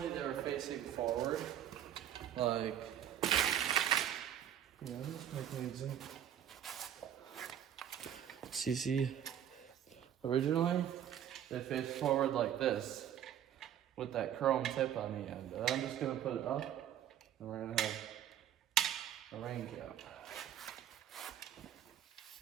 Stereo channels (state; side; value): quieter; left; 10.3 dB